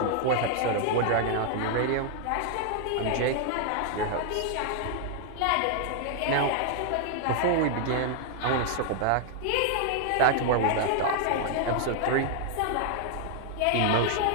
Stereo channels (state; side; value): different; both; correlation 0.00